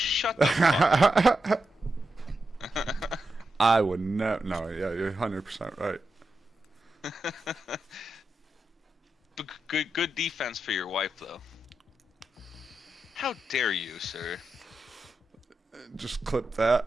the fuck up. I would never. No, yeah, you're 100% right. But good defense for your wife, though. How dare you, sir? Just clip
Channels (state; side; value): normal; both; correlation 0.88